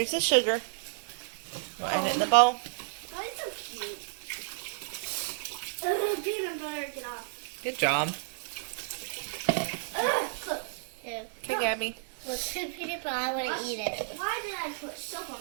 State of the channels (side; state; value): left; silent; digital silence